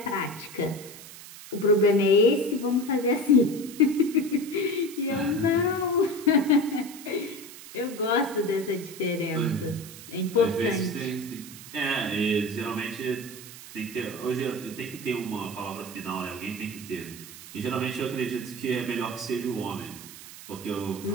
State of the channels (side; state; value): right; noise; hiss, 15 dB below the sound